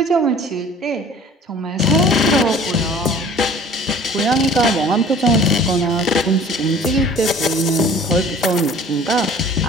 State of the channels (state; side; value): normal; both; correlation 0.48